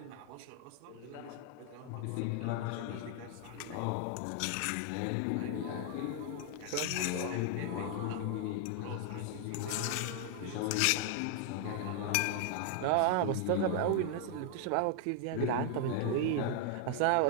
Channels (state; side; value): different; both; correlation 0.00